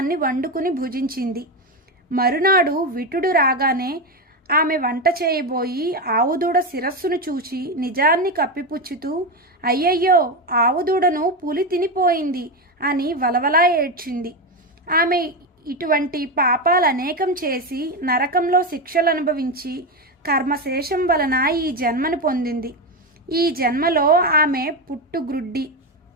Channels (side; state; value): both; normal; correlation 0.13